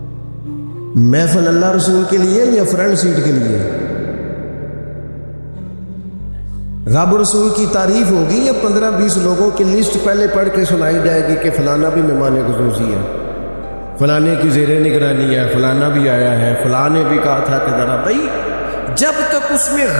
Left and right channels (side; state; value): both; inverted; correlation -1.00